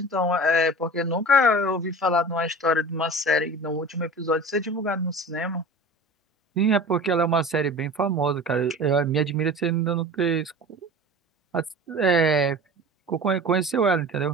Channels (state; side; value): normal; both; correlation 0.37